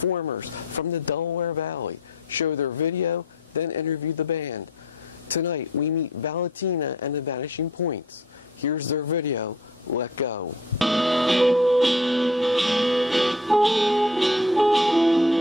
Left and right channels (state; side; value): normal; both; correlation 0.49